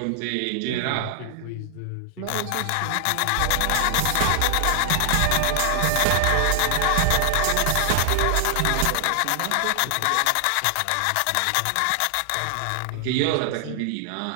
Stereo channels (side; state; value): both; different; correlation 0.00